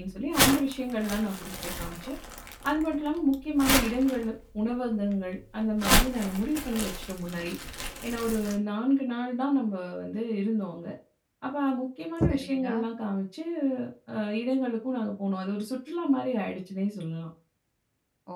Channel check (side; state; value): both; identical; correlation 1.00